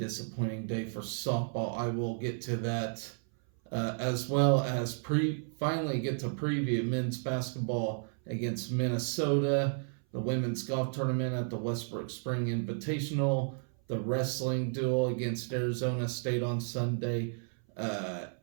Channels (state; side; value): silent; left; 56 dB below the other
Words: day for softball. I will get to that, as well as finally get to preview men's basketball against Minnesota, the women's golf tournament at the Westbrook Spring Invitational, the wrestling duel against Arizona State on Sunday.